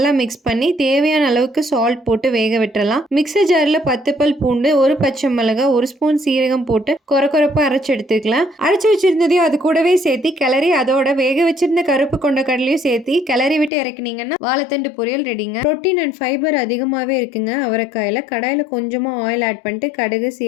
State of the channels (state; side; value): drops out; right; at 13.7 s